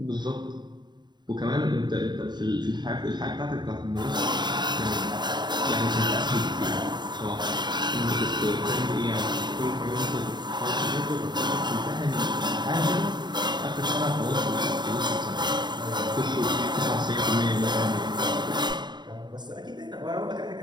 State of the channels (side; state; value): left; late; 0.21 ms